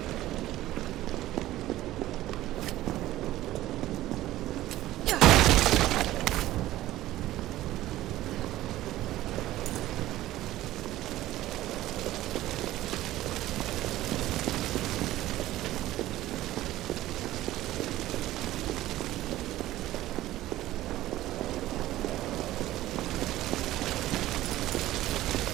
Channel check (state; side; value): quieter; left; 15.3 dB